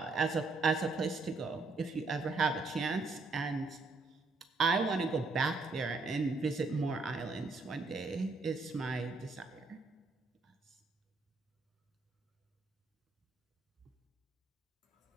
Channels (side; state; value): left; quieter; 3.6 dB